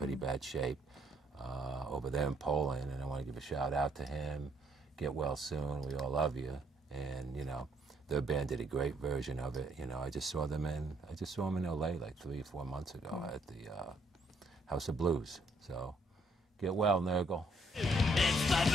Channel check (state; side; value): normal; both; correlation 0.69